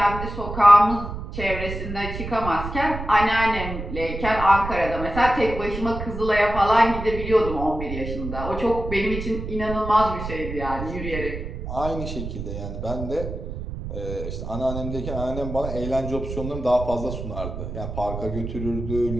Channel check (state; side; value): noise; right; rumble, 7 dB below the sound